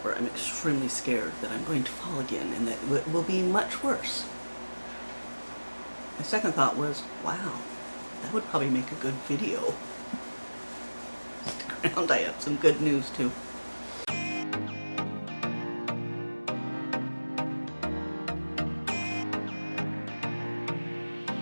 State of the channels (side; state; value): both; inverted; correlation -1.00